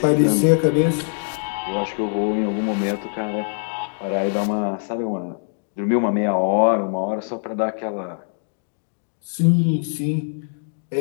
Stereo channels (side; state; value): right; silent; digital silence